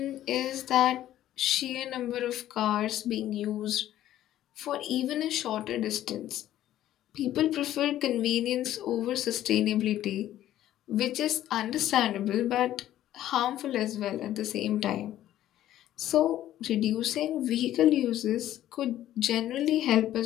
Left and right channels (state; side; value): quieter; right; 12.9 dB